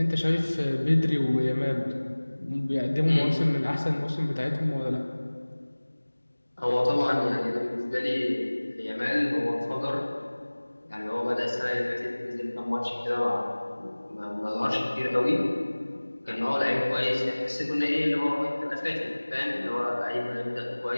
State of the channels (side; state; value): both; inverted; correlation -1.00